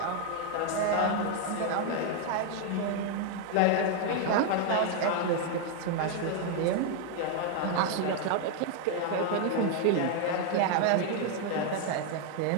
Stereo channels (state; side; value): different; both; correlation 0.00